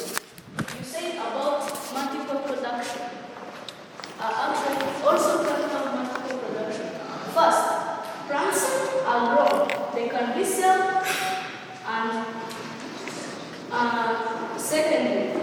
you said about multiple production. Actually, also plants have multiple production. First, plants are grown. They can be sold, and secondly,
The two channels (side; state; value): both; identical; correlation 1.00